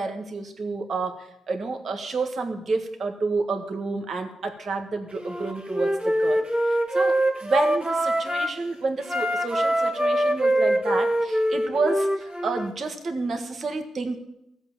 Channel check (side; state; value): both; normal; correlation 0.92